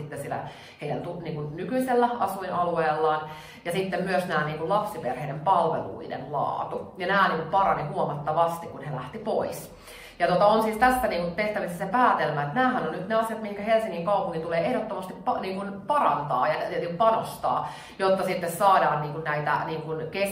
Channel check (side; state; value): both; identical; correlation 1.00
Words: siellä heidän niin kuin nykyisellä asuinalueellaan. Ja sitten myös nämä niin kuin lapsiperheiden palveluiden laatu. Ja nämä niin kuin parani huomattavasti, kun he lähti pois. Ja on siis tässä niin tehtävissä se päätelmä, että nämähän on nyt ne asiat, mihin Helsingin kaupunki tulee ehdottomasti niin parantaa ja panostaa, jotta sitten saadaan niin näitä niin